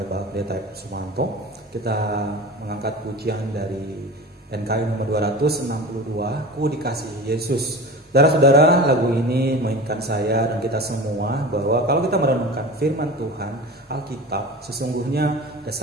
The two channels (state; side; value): normal; both; correlation 0.33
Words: Bapak Pendeta Sumanto. Kita mengangkat pujian dari NKI nomor 262, Ku Dikasihi Yesus. Saudara-saudara, lagu ini mengingatkan saya dan kita semua bahwa kalau kita merenungkan firman Tuhan, Alkitab, sesungguhnya ada